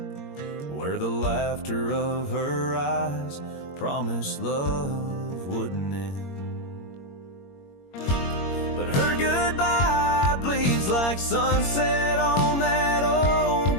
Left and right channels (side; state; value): right; late; 21 ms